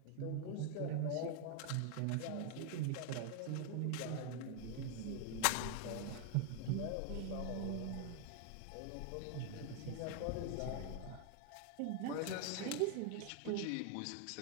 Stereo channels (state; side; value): different; both; correlation 0.00